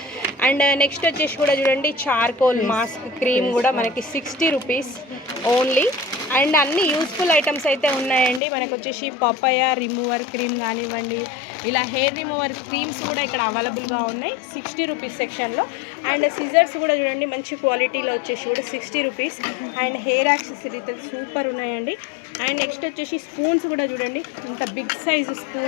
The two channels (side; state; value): right; drops out; at 8.4 s